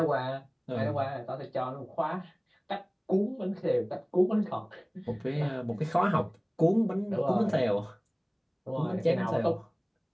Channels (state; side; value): identical; both; correlation 1.00